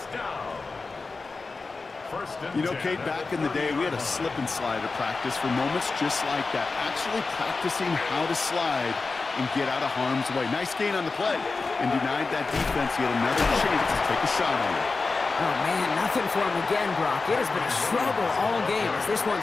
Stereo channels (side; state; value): right; quieter; 4.0 dB